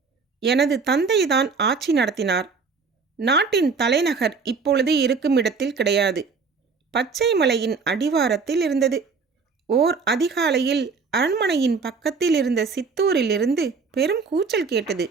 எனது தந்தைதான் ஆட்சி நடத்தினார். நாட்டின் தலைநகர் இப்பொழுது இருக்கும் இடத்தில் கிடையாது. பச்சை மலையின் அடிவாரத்தில் இருந்தது. ஓர் அதிகாலையில் அரண்மனையின் பக்கத்தில் இருந்த சித்தூரிலிருந்து பெரும் கூச்சல் கேட்டது.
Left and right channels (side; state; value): left; quieter; 4.9 dB